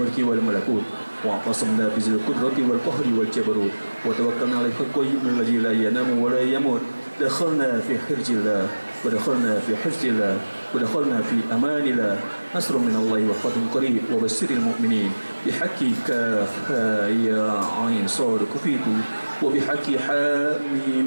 wal malakut wa qasamna bi qudrati wal qahri wal jabarut wa tawakkalna 'ala al-qayyum alladhi la yanamu wa la yamut. Dakhalna fi hirjillah wa dakhalna fi hifzillah wa dakhalna fi amanillah. Nasrun min Allah wa fathun qarib wa basyiril mu'minin bihaqqi kaf ya 'ain sad kufitu wa bihaqqi ha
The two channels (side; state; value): both; inverted; correlation -1.00